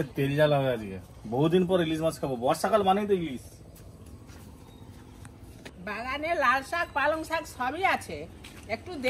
তেল জ্বালা হয়ে আজকে, বহুদিন পর ইলিশ মাছ খাবো। বর্ষাকাল মানেই তো ইলিশ। বাগানে লাল শাক, পালং শাক সবই আছে, একটু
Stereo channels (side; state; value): both; identical; correlation 1.00